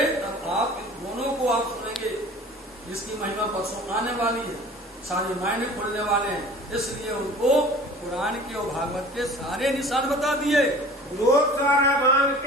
तब आप इन दोनों को आप सुनेंगे। इसकी महिमा परसों आने वाली है, सारे मायने खुलने वाले हैं। इसलिए उनको पुराण के और भागवत के सारे निशान बता दिए, सारा बांध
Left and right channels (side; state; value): both; normal; correlation 0.44